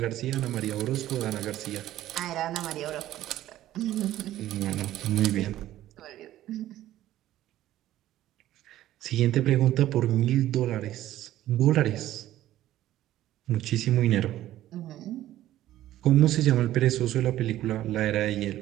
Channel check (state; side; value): quieter; left; 13.8 dB